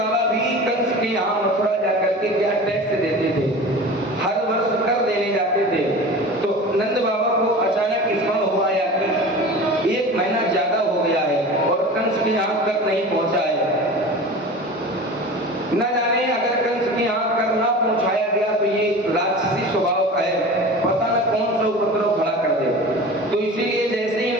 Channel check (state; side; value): normal; both; correlation 0.35